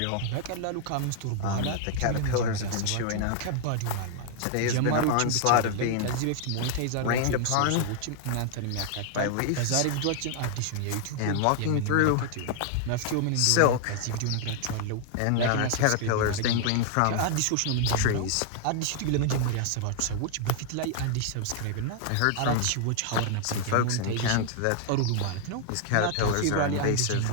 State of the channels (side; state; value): both; different; correlation 0.00